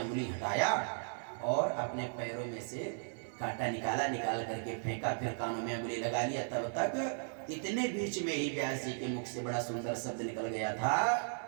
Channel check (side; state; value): left; silent; 54 dB below the other